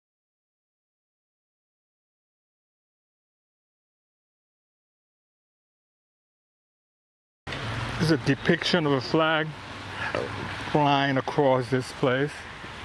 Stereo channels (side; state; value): both; identical; correlation 1.00